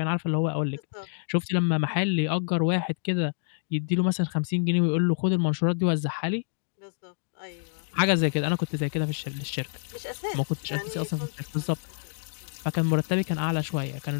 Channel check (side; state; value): right; silent; digital silence